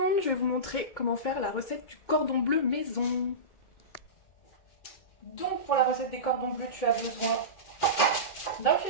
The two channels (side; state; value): right; late; 2.2 ms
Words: je vais vous montrer comment faire la recette du cordon bleu maison. Donc pour la recette des cordons bleus, tu as besoin d'un